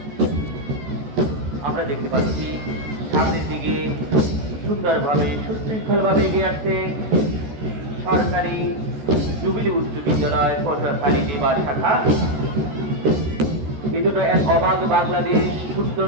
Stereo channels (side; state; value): left; late; 14 ms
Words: আমরা দেখতে পাচ্ছি সামনের দিকে সুন্দরভাবে সুশৃঙ্খলভাবে এগিয়ে আসছে সরকারি জুবিলি উচ্চ বিদ্যালয় পটুয়াখালী দিবা শাখা। এই দুটো এক অবাধ বাংলাদেশ